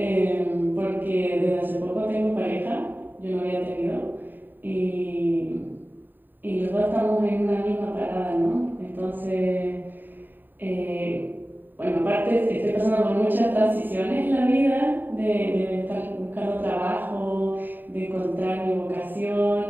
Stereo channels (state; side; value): late; left; 0.091 ms